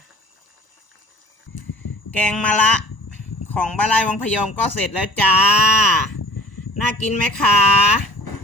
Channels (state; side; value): late; right; 1.0 ms